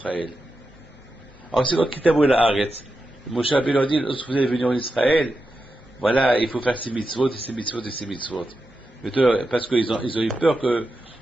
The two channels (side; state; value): both; normal; correlation 0.89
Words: Alors c'est donc Kitabo el Haaretz. Moshe Rabbeinu leur dit, lorsque vous allez venir en Israël, voilà, il faut faire ces mitzvot, et ces mitzvot, et ces mitzvot. Parce qu'ils ont eu peur que